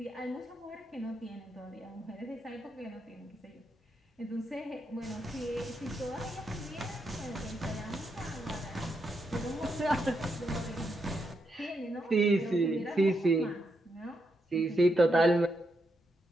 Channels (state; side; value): normal; both; correlation 0.82